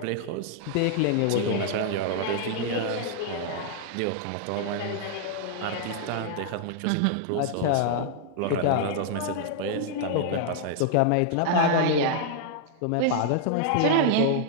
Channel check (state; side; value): different; both; correlation 0.00